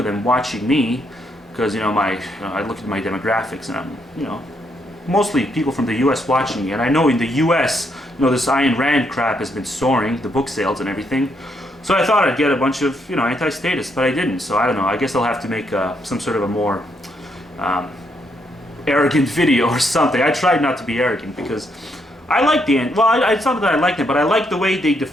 them watching me, because I look at my demographics, and I'm mostly people from the U.S. watching me, and I know in the U.S. this Ayn Rand crap has been soaring, the book sales and everything. So I thought I'd get a bunch of anti-statists, but I didn't. So I don't know. I guess I'll have to make some sort of a more arrogant video or something. I tried not to be arrogant because I like it's not that I like them, but I like the way they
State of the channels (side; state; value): both; normal; correlation 0.75